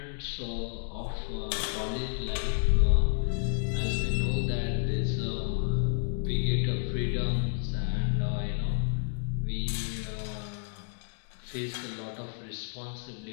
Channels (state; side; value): silent; right; digital silence